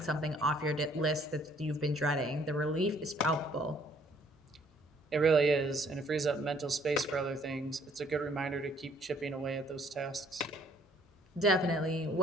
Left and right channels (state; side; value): normal; both; correlation 0.62